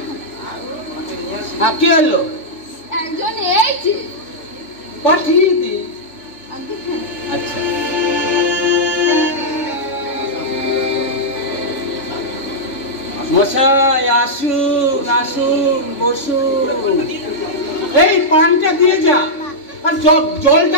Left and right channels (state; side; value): late; right; 3.6 ms